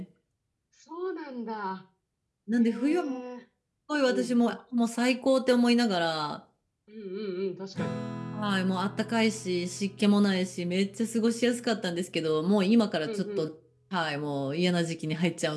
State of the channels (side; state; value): both; identical; correlation 1.00